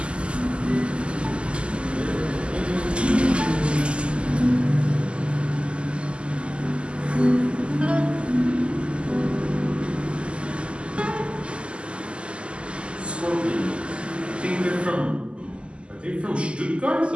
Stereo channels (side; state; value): left; late; 0.053 ms